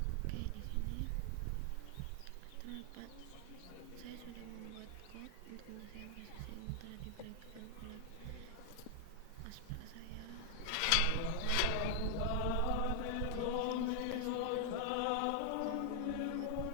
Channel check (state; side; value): different; both; correlation 0.00